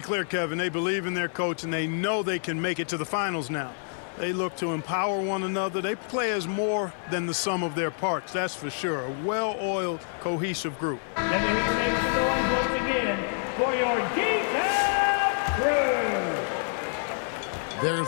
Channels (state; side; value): silent; right; 59 dB below the other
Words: clear, Kevin. They believe in their coach, and they know they can make it to the finals now. They look to empower one another. They play as more than the sum of their parts, that's for sure. A well-oiled, cohesive group. And here makes the noise once again for your detail crew.